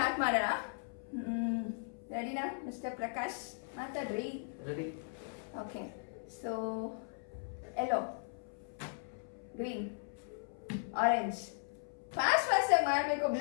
ಮಾಡೋಣ. ರೆಡಿನಾ ಮಿಸ್ಟರ್ ಪ್ರಕಾಶ್? ಮಾತಾಡ್ರಿ. Ready. Okay. So yellow, green, orange. Fast ಆಗಿ ಮಾಡಬೇಕು.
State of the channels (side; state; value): right; silent; 53 dB below the other